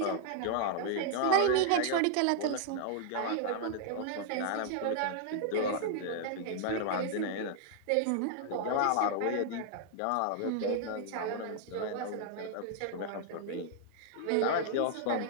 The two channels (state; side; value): different; both; correlation 0.00